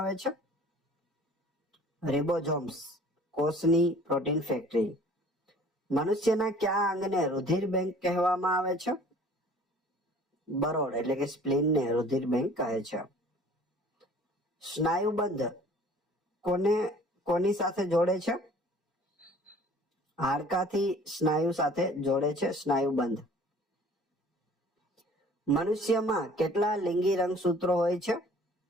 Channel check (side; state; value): both; normal; correlation 0.50